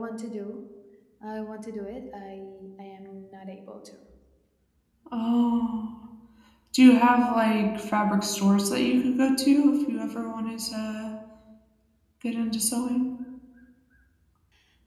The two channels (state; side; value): identical; both; correlation 1.00